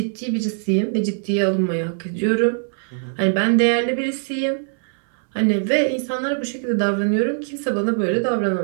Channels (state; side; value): silent; left; 62 dB below the other